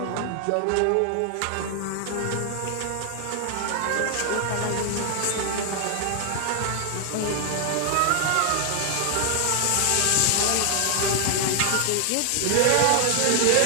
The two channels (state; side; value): different; both; correlation 0.00